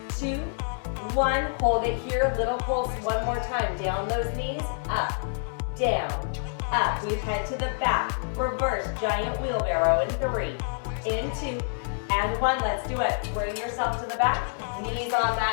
2, 1. Hold it here. Little pulse one more time. Down those knees. Up, down, up. We head to the back. Reverse giant wheelbarrow in 3, in 2, and 1. Let's do it. Bring yourself to the back. Knees on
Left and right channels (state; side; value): silent; right; 60 dB below the other